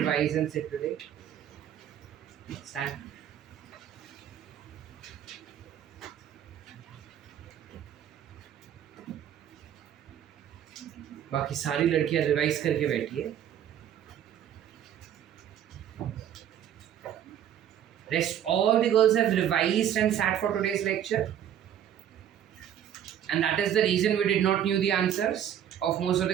and sit today? Stand. बाकी सारी लड़कियां रिवाइज करके बैठी है. Rest all the girls have revised and sat for today's lecture. And that is the reason we did not knew the answers of most of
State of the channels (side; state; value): left; quieter; 10.1 dB